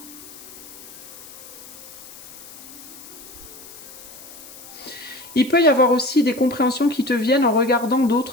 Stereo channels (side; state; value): left; noise; hiss, 17 dB below the sound